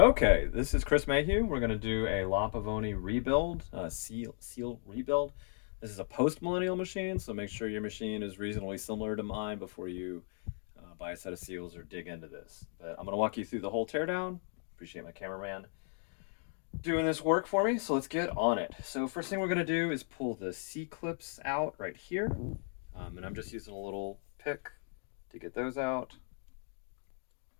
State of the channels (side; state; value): right; silent; 54 dB below the other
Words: this is Chris Mayhew. We're going to do a Pavoni rebuild, seal rebuild. This is a post-millennial machine, so make sure your machine is reasonably similar to mine before you buy a set of seals or dig into this. But I'm going to walk you through the whole teardown. Appreciate my cameraman doing this work for me, so let's get on it. So first thing we're going to do is pull the C-clips out right here. And I'm just using a little pick to get those out.